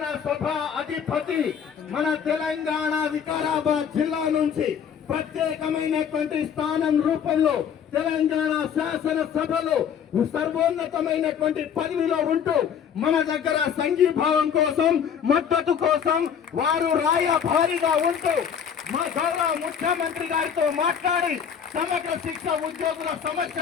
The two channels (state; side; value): quieter; right; 7.9 dB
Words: అధిపతి మన తెలంగాణ వికారాబాద్ జిల్లా నుంచి ప్రత్యేకమైనటువంటి స్థానం రూపంలో తెలంగాణ శాసనసభలో సర్వోన్నతమైనటువంటి పదవిలో ఉంటూ మన దగ్గర సంఘీభావం కోసం మద్దతు కోసం వారు రాయభారిగా ఉంటూ మా గౌరవ ముఖ్యమంత్రి గారితో మాట్లాడి సమగ్ర శిక్ష ఉద్యోగుల